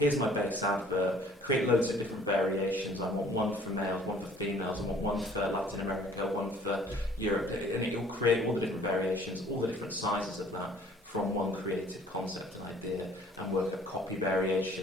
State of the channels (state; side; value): normal; both; correlation 0.55